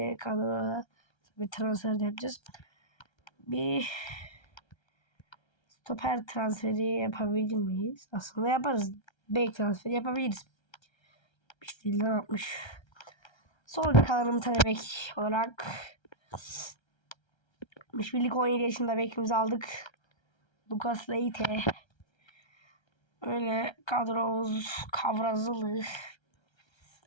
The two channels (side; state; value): right; late; 1.3 ms